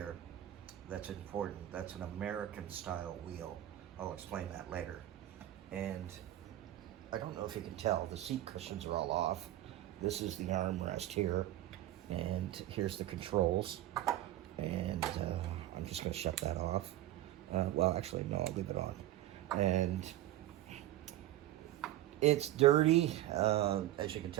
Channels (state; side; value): quieter; left; 14.1 dB